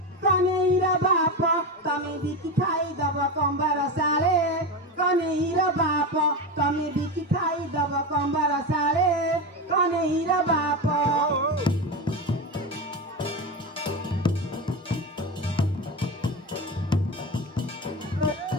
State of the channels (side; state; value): both; normal; correlation 0.19